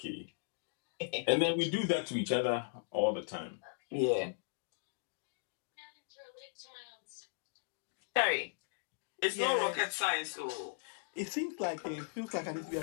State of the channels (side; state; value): right; silent; digital silence